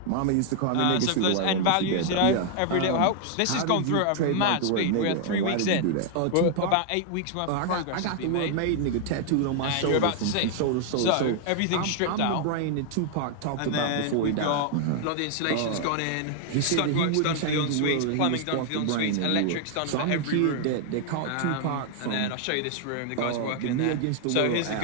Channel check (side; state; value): both; different; correlation 0.00